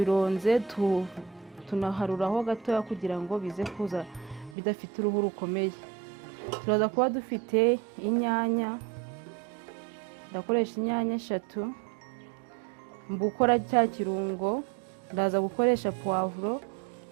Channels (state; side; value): drops out; left; at 4.5 s